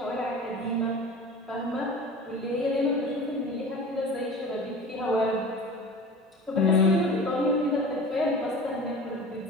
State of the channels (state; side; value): normal; both; correlation 0.38